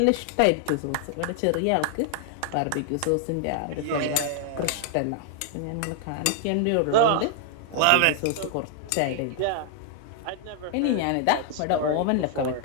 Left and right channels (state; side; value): different; both; correlation 0.00